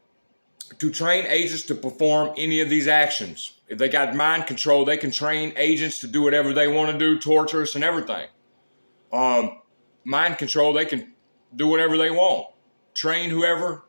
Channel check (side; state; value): both; inverted; correlation -1.00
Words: To train agents to perform any of these actions. If they got mind control, they can train agents to do whatever they want to do, torture us and everything. Mind control, they can do whatever they want. Train whoever,